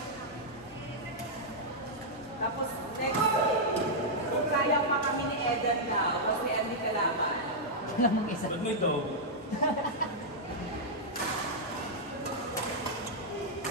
Tapos, next, kung kaya pa kami ni Eden daw, kasi hindi kalaman. Wala mong isa. Ba't mo ito?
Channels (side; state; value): both; normal; correlation -0.06